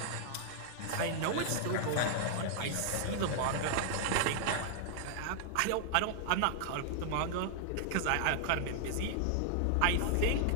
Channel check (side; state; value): both; different; correlation -0.01